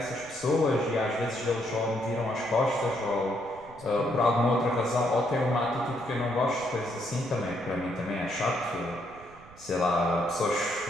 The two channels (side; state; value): right; noise; rumble, 23 dB below the sound